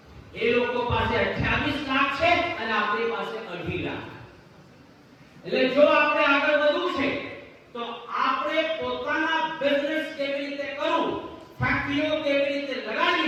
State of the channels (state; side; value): identical; both; correlation 1.00